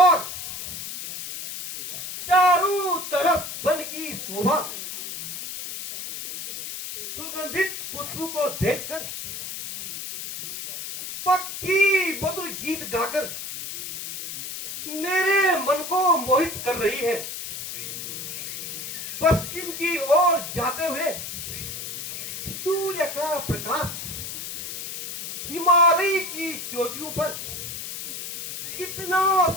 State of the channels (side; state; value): left; noise; hiss, 7 dB below the sound